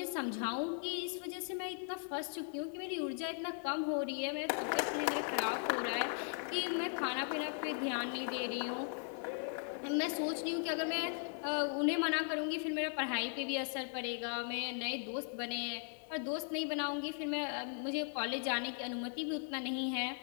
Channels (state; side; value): silent; right; 52 dB below the other